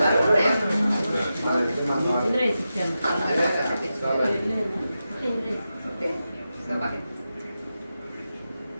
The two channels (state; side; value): inverted; both; correlation -0.90